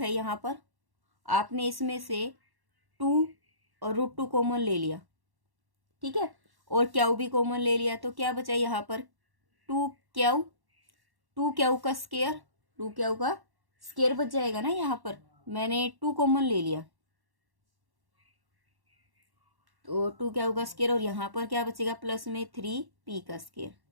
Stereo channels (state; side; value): late; left; 1.1 ms